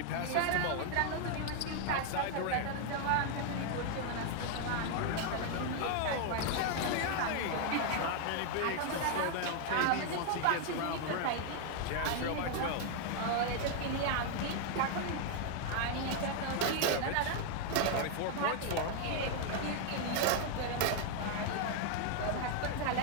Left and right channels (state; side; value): different; both; correlation 0.00